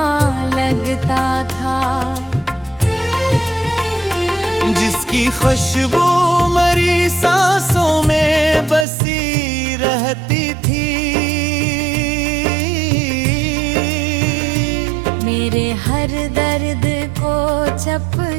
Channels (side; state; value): left; drops out; at 8.8 s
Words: लगता था, जिसकी खुशबू मरी सांसों में बसी रहती थी। मेरे हर दर्द को